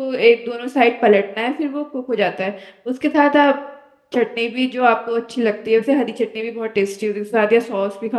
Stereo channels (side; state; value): both; identical; correlation 1.00